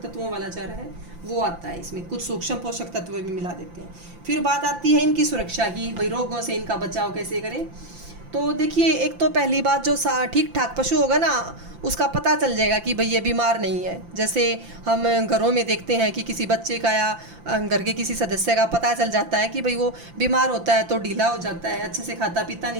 तत्वों वाला चारा है, वो आता है। इसमें कुछ सूक्ष्म पोषक तत्व भी मिला देते हैं। फिर बात आती है इनकी सुरक्षा की, भाई रोगों से इनका बचाव कैसे करें। तो देखिए, एक तो पहली बात, जो ठीक ठाक पशु होगा ना, उसका पता चल जाएगा कि भाई ये बीमार नहीं है। जैसे हम घरों में देखते हैं कि किसी बच्चे का या घर के किसी सदस्य का पता चल जाता है कि भाई वो बीमार होता है तो ढीला हो जाता है, अच्छे से खाता पीता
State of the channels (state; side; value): late; left; 5.8 ms